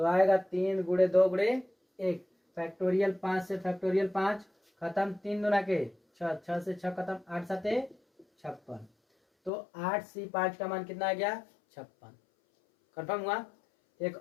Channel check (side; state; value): right; drops out; at 9.5 s